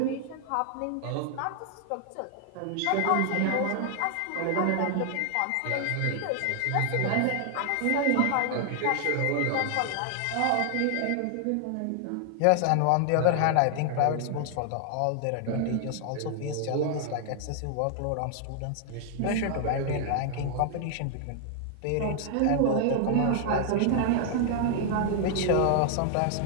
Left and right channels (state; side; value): different; both; correlation 0.00